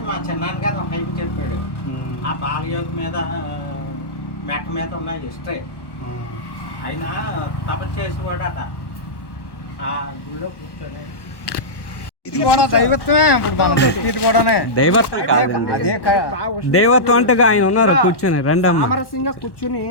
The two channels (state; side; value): late; right; 1.1 ms